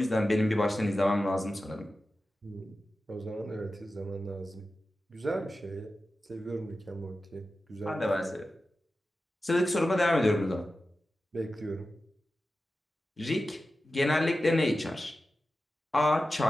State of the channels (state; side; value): normal; both; correlation 0.93